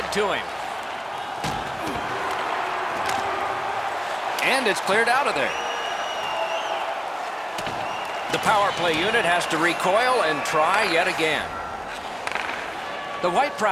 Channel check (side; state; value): both; identical; correlation 1.00